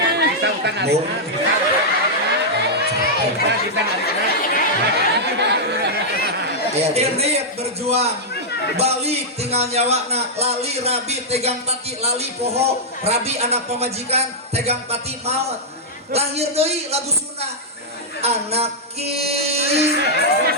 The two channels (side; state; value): both; normal; correlation -0.07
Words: bisa utang hari. Bung. Bisa hari. Irit berjuang balik tinggal nyawakna lali rabi tegang pati lali poho rabi anak pemajikan tegang pati maut lahir deui lagu Sunda anak ki